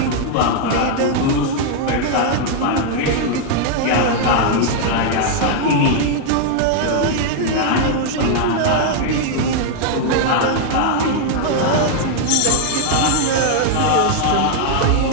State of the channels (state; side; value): different; both; correlation 0.00